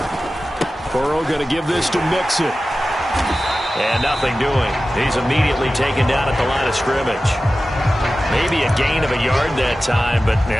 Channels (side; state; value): both; normal; correlation 0.95